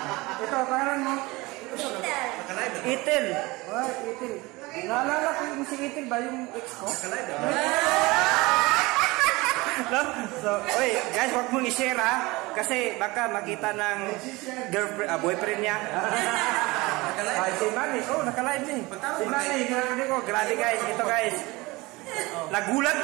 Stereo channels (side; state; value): left; quieter; 22.4 dB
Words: Ito, pangalan mo? Itel. Itel. Oh, Itel. Naalala ko yung si Itel ba? Yung ex ko? No? So, oy, guys, wag mong i-share ha. Kasi baka makita ng girlfriend, boyfriend niya. Si Manny, naka-live niya. Si Manny, grabe guys, ito guys. Nagulat